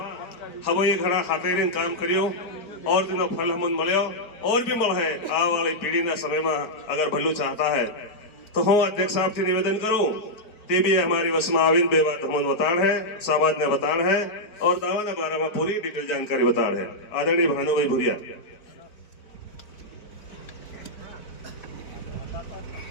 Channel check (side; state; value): right; late; 4.5 ms